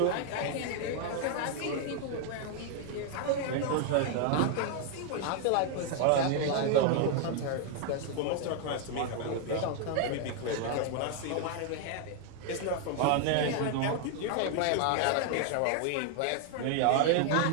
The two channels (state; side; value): different; both; correlation 0.00